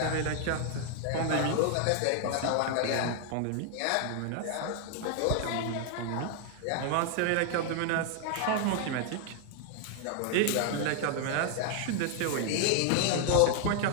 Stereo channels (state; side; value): different; both; correlation 0.00